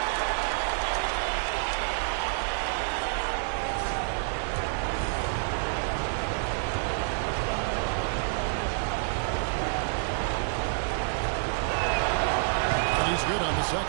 He's good on the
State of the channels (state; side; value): silent; left; digital silence